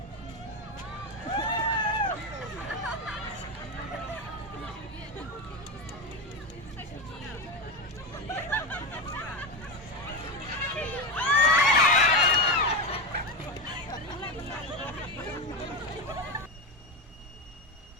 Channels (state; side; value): normal; both; correlation 0.17